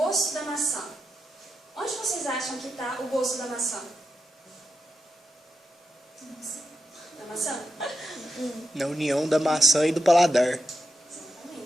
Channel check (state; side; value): normal; both; correlation 0.88